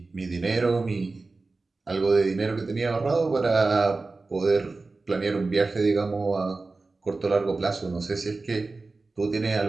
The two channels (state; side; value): quieter; left; 3.6 dB